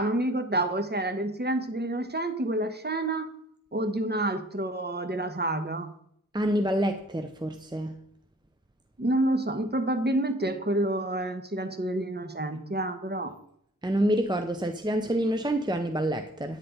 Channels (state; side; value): normal; both; correlation 0.53